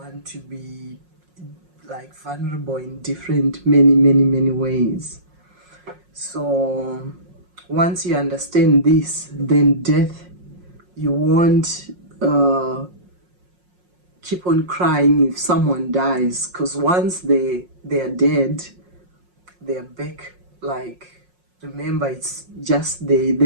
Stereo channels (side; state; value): left; late; 5.5 ms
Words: to be like vulnerable in different many ways. So once you understand this, then death, you won't keep on crying if someone dies, because once they are dead, they are back. Like, remember, it's just they're